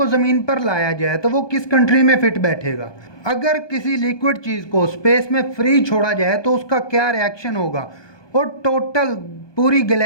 ज़मीन पर लाया जाए तो वो किस कंट्री में फिट बैठेगा? अगर किसी लिक्विड चीज़ को स्पेस में फ्री छोड़ा जाए तो उसका क्या रिएक्शन होगा? और टोटल पूरी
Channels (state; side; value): late; right; 1.2 ms